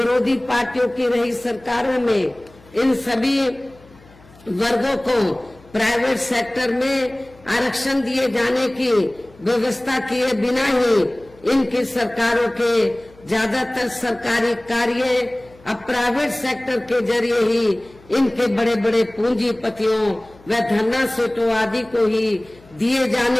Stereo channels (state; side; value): noise; left; hum, 26 dB below the sound